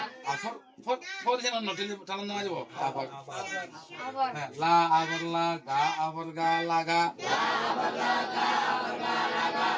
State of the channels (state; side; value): identical; both; correlation 1.00